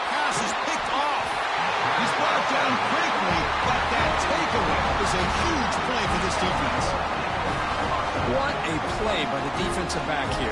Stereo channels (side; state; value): both; identical; correlation 1.00